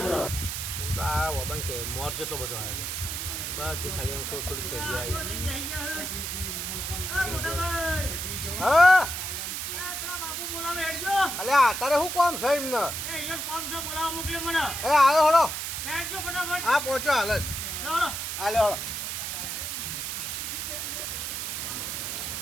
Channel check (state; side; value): noise; right; hiss, 4 dB below the sound